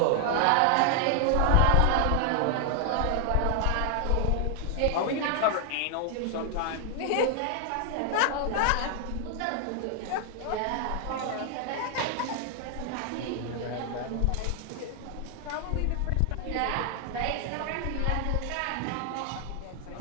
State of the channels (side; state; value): both; different; correlation 0.00